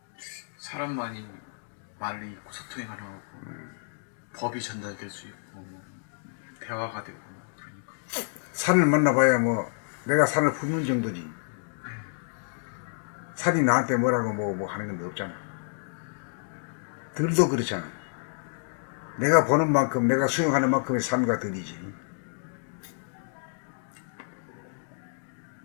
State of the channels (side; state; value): right; silent; digital silence